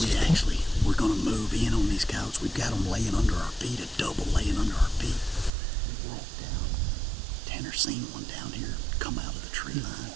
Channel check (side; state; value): left; drops out; at 5.5 s